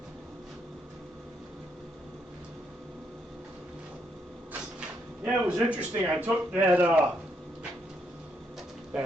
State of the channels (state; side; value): normal; both; correlation 0.76